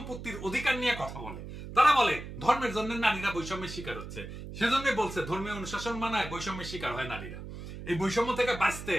অধিকার নিয়ে কথা বলে। তারা বলে ধর্মের জন্য নারীরা বৈষম্যের শিকার হচ্ছে, সেজন্য বলছে ধর্মীয় অনুশাসন মানায় বৈষম্যের শিকার হয় নারীরা। এই বৈষম্য থেকে বাঁচতে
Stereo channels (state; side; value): noise; right; hum, 10 dB below the sound